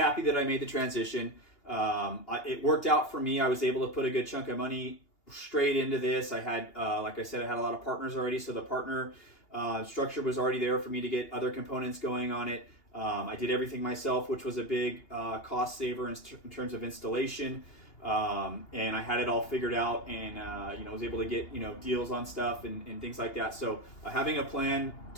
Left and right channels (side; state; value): right; late; 2.8 ms